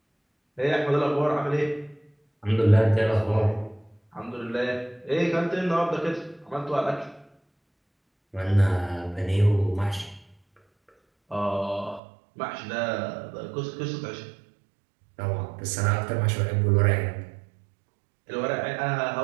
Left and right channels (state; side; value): drops out; left; at 12.0 s